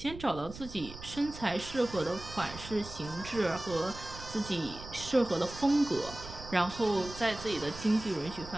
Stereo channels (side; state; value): right; noise; rumble, 13 dB below the sound